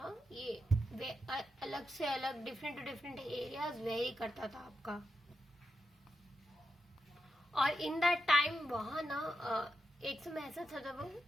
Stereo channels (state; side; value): normal; both; correlation 0.86